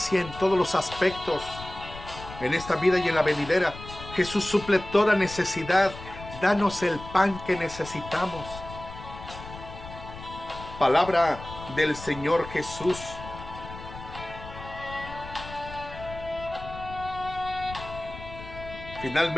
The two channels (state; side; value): noise; left; rumble, 13 dB below the sound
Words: en todos los aspectos, en esta vida y en la venidera. Jesús suple toda necesidad. Danos el pan que necesitamos. Palabra del Señor Jesús.